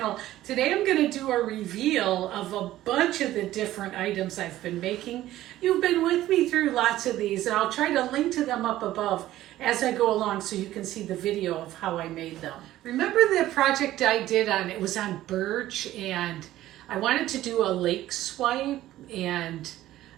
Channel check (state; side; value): quieter; left; 14.5 dB